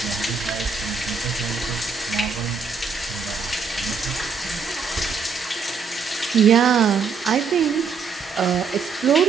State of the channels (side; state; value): left; quieter; 5.5 dB